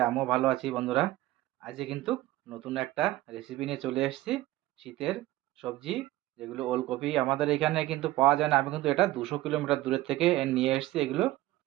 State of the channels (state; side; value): quieter; left; 16.7 dB